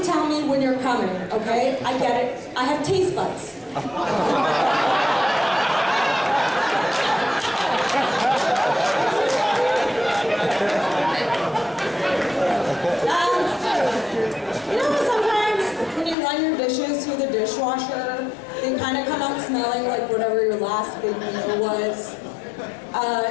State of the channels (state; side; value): drops out; right; at 16.2 s